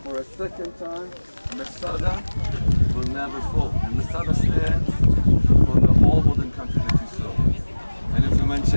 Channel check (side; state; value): both; inverted; correlation -1.00